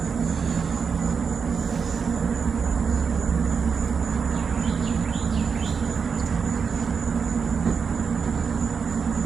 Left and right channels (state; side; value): quieter; left; 5.9 dB